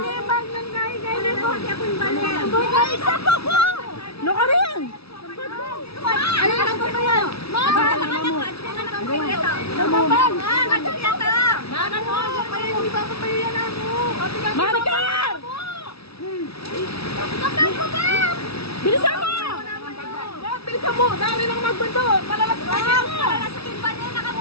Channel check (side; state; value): right; late; 0.77 ms